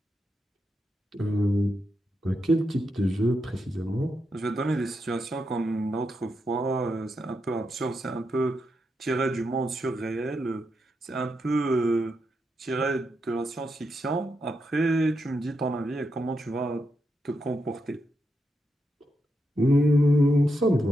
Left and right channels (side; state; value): both; normal; correlation 0.84